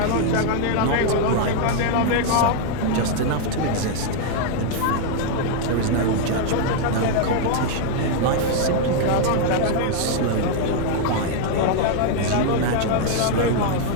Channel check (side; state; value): both; different; correlation 0.00